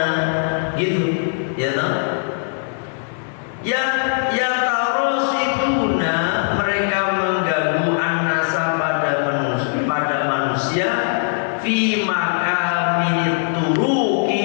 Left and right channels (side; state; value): right; silent; digital silence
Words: gitu ya toh.